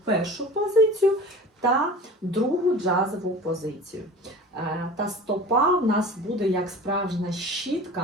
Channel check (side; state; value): both; normal; correlation 0.38